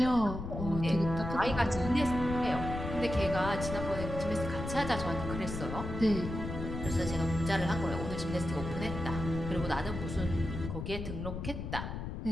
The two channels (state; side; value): noise; left; rumble, 6 dB below the sound